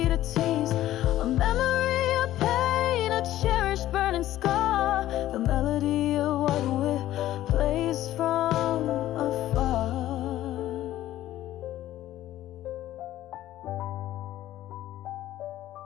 a tease, a memory, a pain, a cherished burning scar, the melody of what we plays from afar.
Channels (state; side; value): quieter; right; 13.9 dB